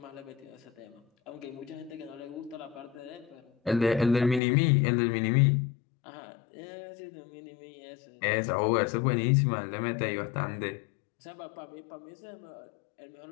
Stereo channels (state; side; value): drops out; right; at 4.4 s